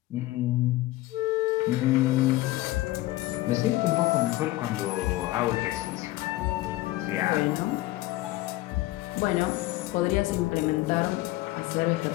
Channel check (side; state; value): right; quieter; 17.7 dB